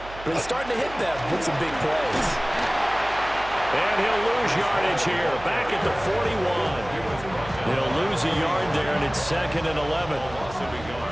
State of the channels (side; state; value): right; noise; hum, 15 dB below the sound